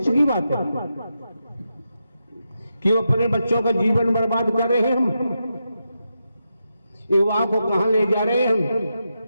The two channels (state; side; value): inverted; both; correlation -0.86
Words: की बात है। क्यों अपने बच्चों का जीवन बर्बाद कर रहे हैं हम? युवा को कहां ले जा रहे हैं हम?